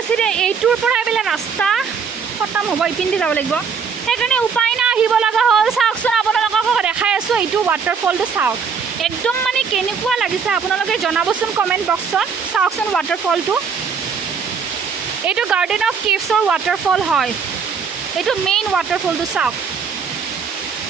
চিধে এইটোৰ পৰা এইবিলাক ৰাস্তা খতম হ'ব ইপিনে যাব লাগিব সেইকাৰণে উপায় নাই আহিব লগা হ'ল চাওকচোন আপোনালোকক দেখাই আছোঁ এইটো ৱাটাৰফলটো চাওক একদম মানে কেনেকুৱা লাগিছে আপোনালোকে জনাবচোন কমেণ্ট বক্সত চাওকচোন ৱাটাৰফলটো এইটো গাৰ্ডেন অফ কেভছৰ ৱাটাৰফল হয় এইটো মেইন ৱাটাৰফলটো চাওক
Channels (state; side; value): quieter; left; 6.0 dB